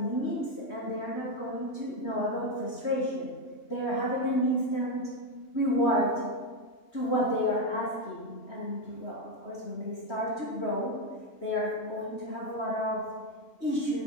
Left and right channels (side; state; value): right; late; 3.1 ms